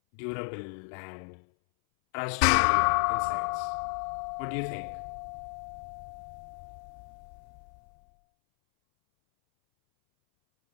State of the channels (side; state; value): right; silent; 57 dB below the other